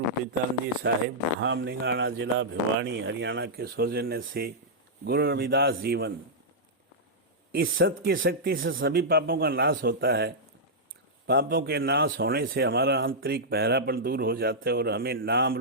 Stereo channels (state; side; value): normal; both; correlation -0.09